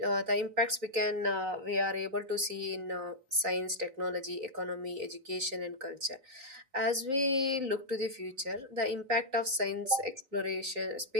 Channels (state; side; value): late; left; 3.6 ms